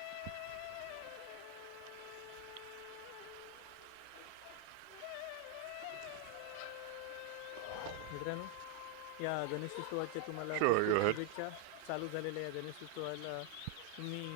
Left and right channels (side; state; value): both; different; correlation 0.00